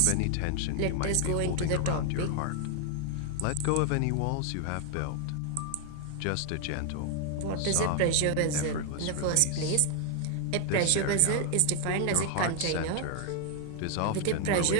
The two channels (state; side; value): different; both; correlation 0.00